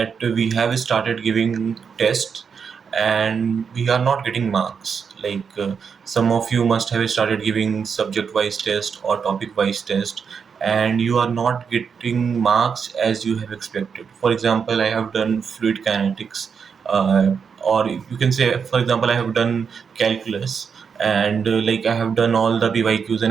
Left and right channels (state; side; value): quieter; left; 6.3 dB